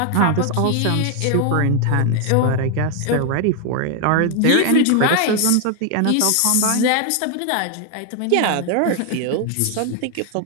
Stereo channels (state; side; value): different; both; correlation 0.00